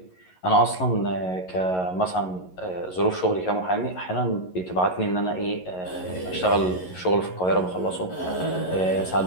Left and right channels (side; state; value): right; late; 11 ms